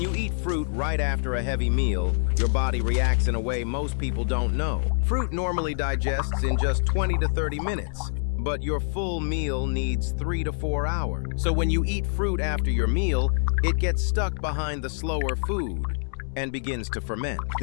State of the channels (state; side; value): silent; right; digital silence